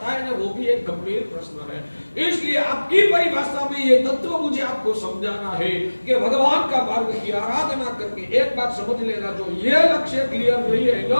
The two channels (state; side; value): inverted; both; correlation -1.00